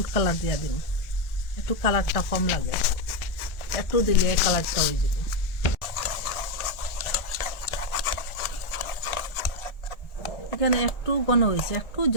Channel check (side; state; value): right; late; 1.4 ms